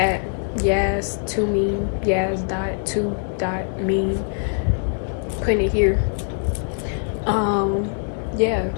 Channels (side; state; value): right; silent; digital silence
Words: yaz2mean, yaz.2.mean, putting it here. Yeah,